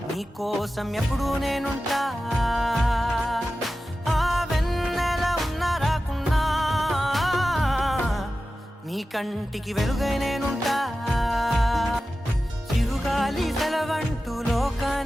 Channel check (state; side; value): normal; both; correlation 0.94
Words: నీకోసం ఎప్పుడు నేనుంటా ఆ వెన్నెల ఉన్నా రాకున్నా నీ కంటికి వెలుగై నేనుంటా చిరుగాలి సెలవంటూ